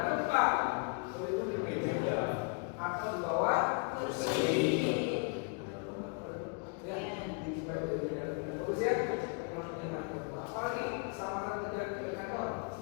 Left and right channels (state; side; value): quieter; right; 39.1 dB